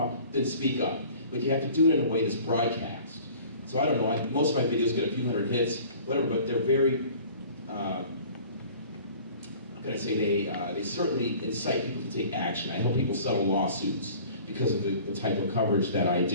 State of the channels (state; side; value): inverted; both; correlation -0.47